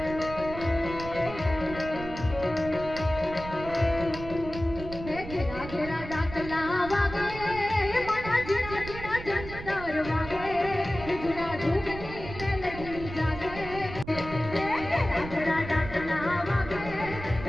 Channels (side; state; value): right; noise; rumble, 11 dB below the sound